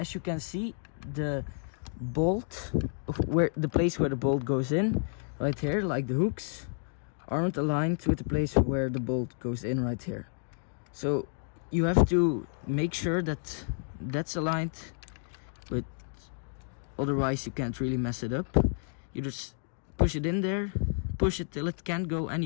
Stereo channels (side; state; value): right; silent; 57 dB below the other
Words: you can see, the bolt, where the place where the bolt goes in, right here, like the hooks, aren't aligned with the place where the bolt goes in right here. So you have to make sure that that's aligned with, otherwise you can't really mess it up. You just push it in there, push it till it can't go